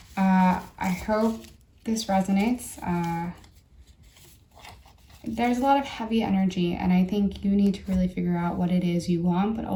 I hope this resonates. There's a lot of heavy energy, and I think you need to really figure out what it is you want, but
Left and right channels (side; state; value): both; identical; correlation 1.00